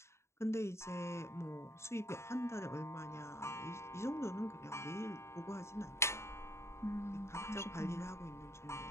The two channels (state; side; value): late; right; 0.13 ms